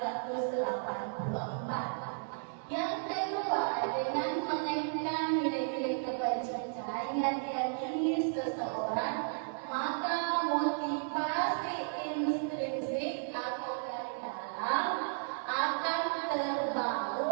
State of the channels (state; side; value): silent; left; digital silence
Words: Yang kedua, dengan menaikkan nilai-nilai kebajikan yang diyakini seseorang, maka motivasi intrinsik atau dari dalam akan